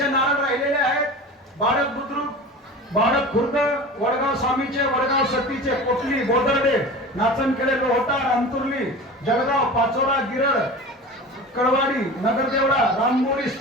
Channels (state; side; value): normal; both; correlation 0.34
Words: नारळ राहिलेले आहेत. बाळक बुद्रुक, बाळक खुर्द, वडगाव स्वामीचे, वडगाव सतीचे, कोटली, बोदर्डे, नाचनखेडे, लोहटार, अंतुर्ली, जळगाव, पाचोरा, गिरड, कळवाडी, नगरदेवळा, राममोरीस,